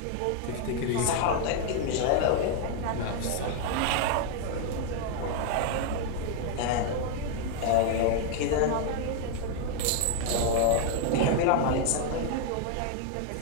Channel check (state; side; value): different; both; correlation 0.00